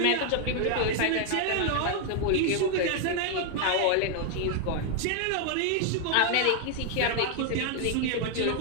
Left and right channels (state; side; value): different; both; correlation 0.00